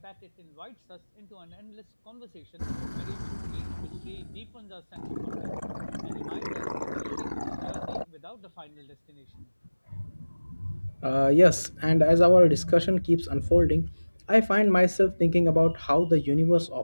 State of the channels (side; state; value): both; inverted; correlation -1.00